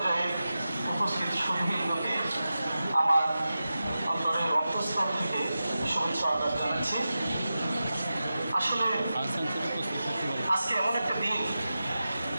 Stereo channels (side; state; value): both; inverted; correlation -0.93